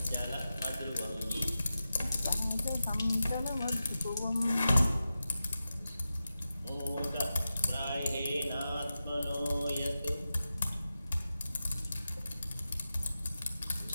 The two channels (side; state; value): both; inverted; correlation -0.92